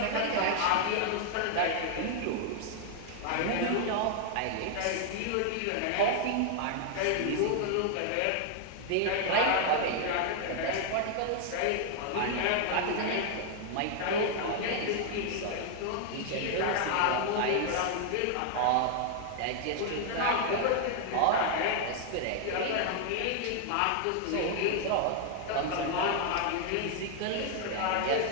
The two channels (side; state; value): both; different; correlation 0.00